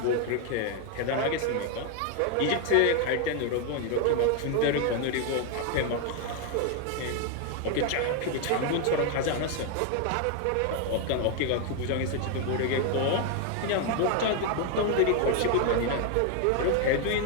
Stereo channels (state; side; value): different; both; correlation 0.01